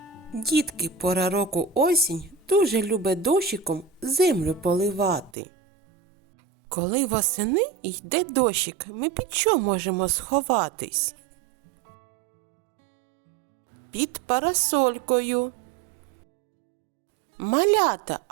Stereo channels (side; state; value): left; drops out; at 5.3 s